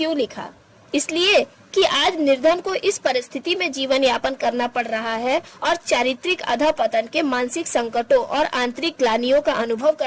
लिखा? इसलिए कि आज निर्धन को इस परिस्थिति में जीवन यापन करना पड़ रहा है और चारित्रिक अधःपतन के मानसिक संकटों और आंतरिक ग्लानियों का अनुभव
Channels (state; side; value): identical; both; correlation 1.00